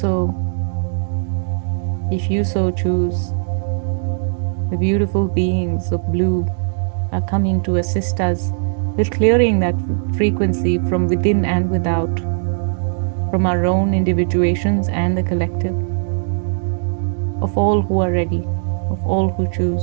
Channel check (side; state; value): left; silent; digital silence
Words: if you so choose, the beautiful beings of blue are coming to assist us with clearing that frequency from within and without, from our own individuations and the collective, of all who are ready, of all who